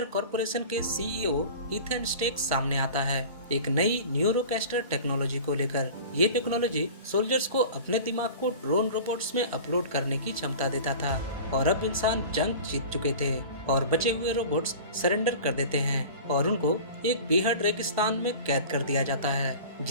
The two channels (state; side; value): inverted; both; correlation -0.38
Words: कॉर्पोरेशन के सीईओ इथन स्टेक सामने आता है एक नई न्यूरोकैस्टर टेक्नोलॉजी को लेकर। ये टेक्नोलॉजी सोल्जर्स को अपने दिमाग को ड्रोन रोबोट्स में अपलोड करने की क्षमता देता था। और अब इंसान जंग जीत चुके थे और बचे हुए रोबोट्स सरेंडर कर देते हैं और उनको एक बेहद रेगिस्तान में कैद कर दिया जाता है